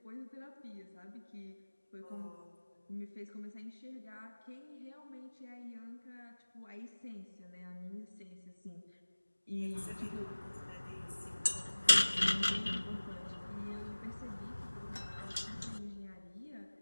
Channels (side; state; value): both; inverted; correlation -1.00